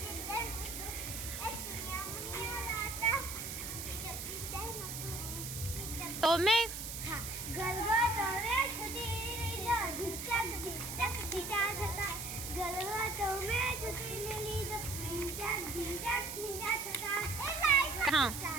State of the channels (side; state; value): right; noise; hiss, 6 dB below the sound